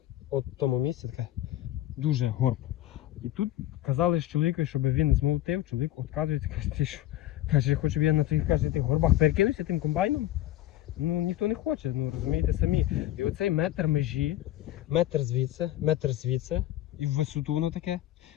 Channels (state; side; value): quieter; right; 14.0 dB